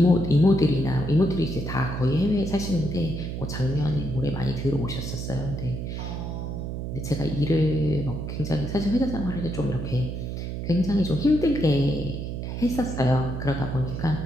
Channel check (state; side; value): noise; right; hum, 5 dB below the sound